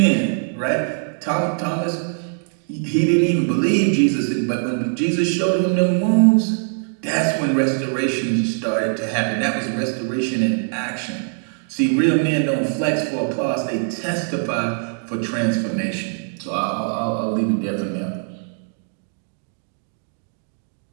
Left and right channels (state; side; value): silent; left; 64 dB below the other